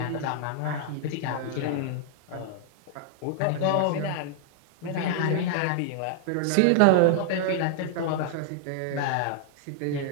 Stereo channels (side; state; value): both; different; correlation 0.00